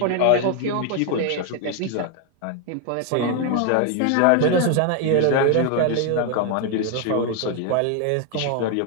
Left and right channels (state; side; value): different; both; correlation 0.01